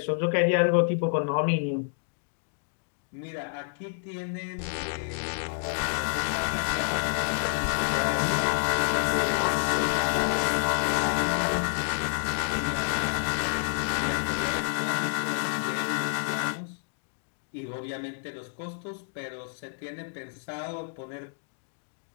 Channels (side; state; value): right; silent; digital silence